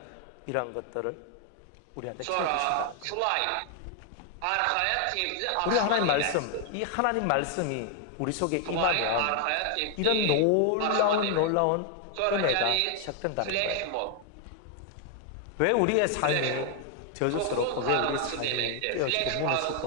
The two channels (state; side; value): different; both; correlation 0.00